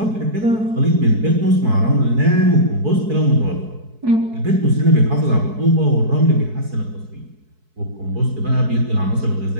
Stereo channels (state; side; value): late; left; 4.6 ms